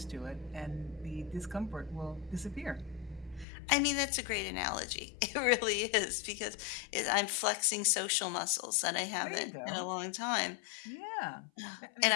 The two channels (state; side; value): drops out; right; at 3.5 s